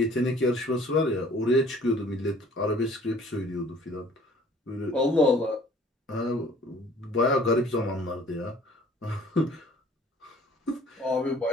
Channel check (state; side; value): normal; both; correlation 0.54